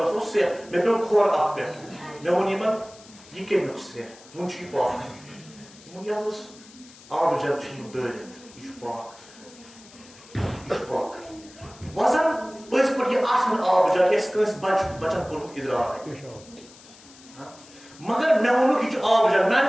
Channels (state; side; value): noise; left; hiss, 22 dB below the sound